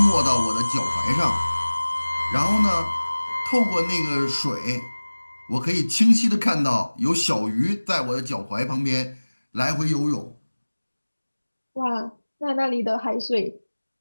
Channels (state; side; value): inverted; both; correlation -1.00